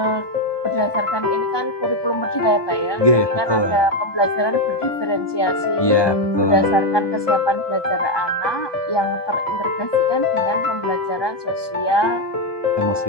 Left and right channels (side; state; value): right; late; 1.2 ms